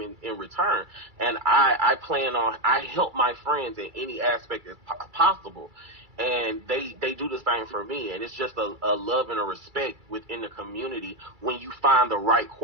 in return. And I help my friends in any aspect as possible, and they do the same for me. And it's just a love and a respect within the community when you find the right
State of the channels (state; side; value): late; left; 2.3 ms